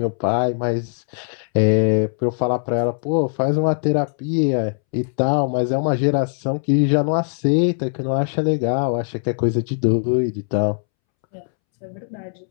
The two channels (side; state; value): right; silent; 65 dB below the other